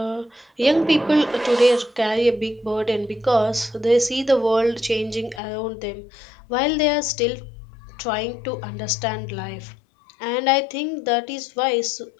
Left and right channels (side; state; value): right; drops out; at 5.4 s